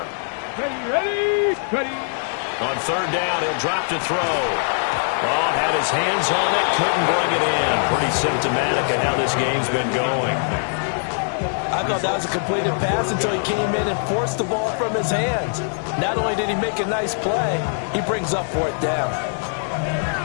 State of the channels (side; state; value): right; silent; digital silence